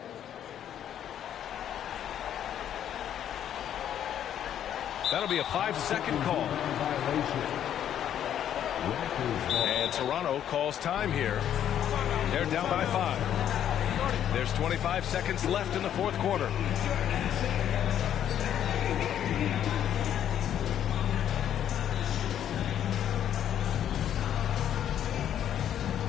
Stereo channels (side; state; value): right; quieter; 10.2 dB